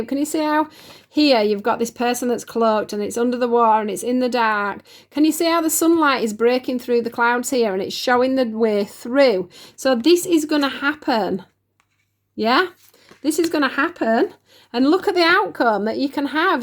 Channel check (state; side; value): identical; both; correlation 1.00